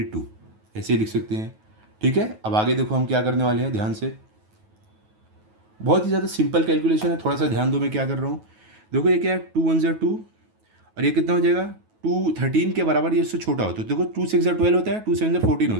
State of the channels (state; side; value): late; left; 9.3 ms